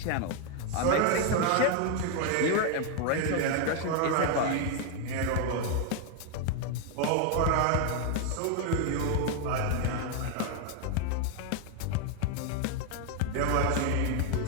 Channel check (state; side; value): different; both; correlation 0.00